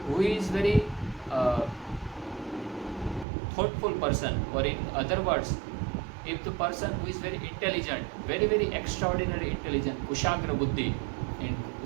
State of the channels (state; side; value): drops out; left; at 3.2 s